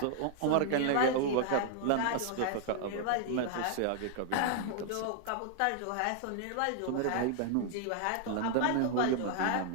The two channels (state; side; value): different; both; correlation 0.00